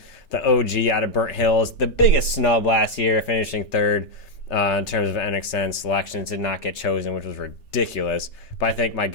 the OG out of Burnt Hills, the biggest snub last year, finishing 3rd. In terms of NXN selections, did not get chosen, which was ridiculous. But I think my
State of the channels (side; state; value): right; late; 3.3 ms